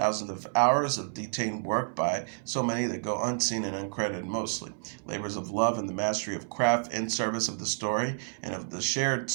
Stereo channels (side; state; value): left; silent; 58 dB below the other